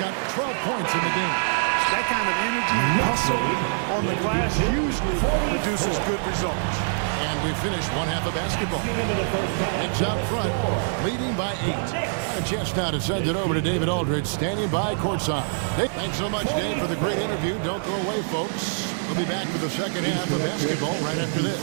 12 points in the game. That kind of energy and muscle on the glass usually produces good results. And we finished one half of basketball. Knicks out front, leading by 8. A chance now to send it over to David Aldridge, standing by courtside. Thanks so much, Dave, for the great interview. Don't go away, folks. We'll be back for the second half of basketball right after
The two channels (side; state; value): left; silent; digital silence